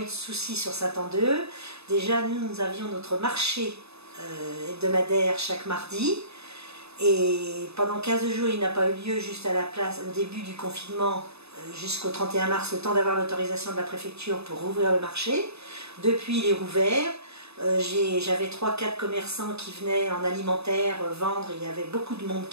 de soucis sur Saint-Andeux. Déjà, nous avions notre marché hebdomadaire chaque mardi. Et pendant 15 jours, il n'a pas eu lieu juste à la place, au début du confinement, jusqu'au 31 mars, le temps d'avoir l'autorisation de la préfecture pour rouvrir le marché. Depuis, il est rouvert. J'avais 3-4 commerçants qui venaient en alimentaire vendre, il y avait beaucoup de monde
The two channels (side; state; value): left; late; 0.79 ms